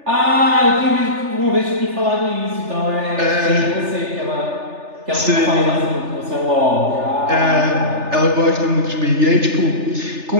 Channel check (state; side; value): late; left; 3.3 ms